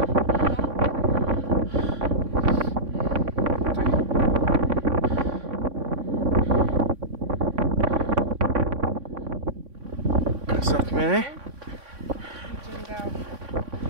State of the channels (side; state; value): left; late; 3.6 ms